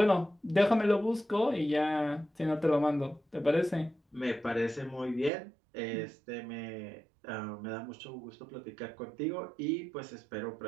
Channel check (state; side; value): drops out; left; at 5.3 s